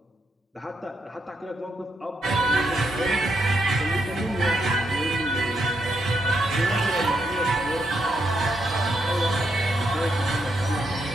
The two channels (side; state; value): both; normal; correlation 0.80